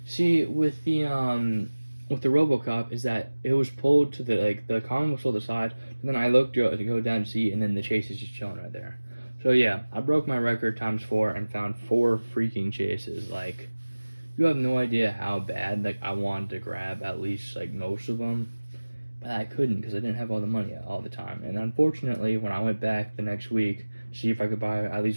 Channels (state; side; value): inverted; both; correlation -1.00